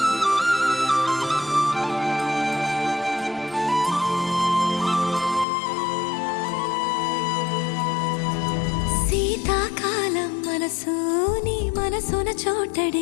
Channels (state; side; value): drops out; right; at 5.5 s